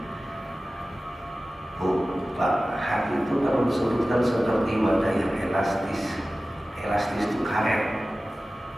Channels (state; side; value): normal; both; correlation 0.96